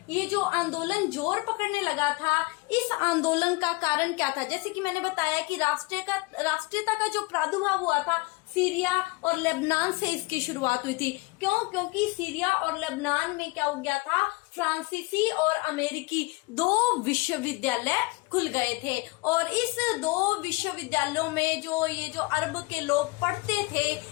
ये जो आंदोलन जोर पकड़ने लगा था, इस आंदोलन का कारण क्या था, जैसे कि मैंने बताया कि राष्ट्रीयता का जो प्रादुर्भाव हुआ था सीरिया और लेबनान से इसकी शुरुआत हुई थी। क्यों? क्योंकि सीरिया और लेबनान में क्या हो गया था, फ्रांसीसी और अमेरिकी दो विश्वविद्यालय खुल गए थे और इस दो विश्वविद्यालयों में जो ये जो अरब के लोग पढ़ते थे,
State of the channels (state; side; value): quieter; right; 24.4 dB